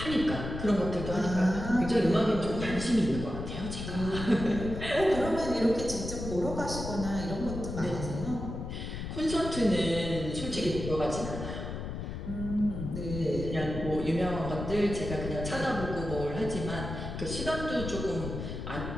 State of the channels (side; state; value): left; noise; rumble, 6 dB below the sound